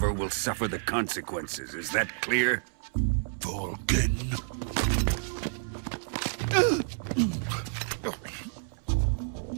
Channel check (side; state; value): left; silent; 58 dB below the other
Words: will suffer the consequences. Is that clear? Volgin.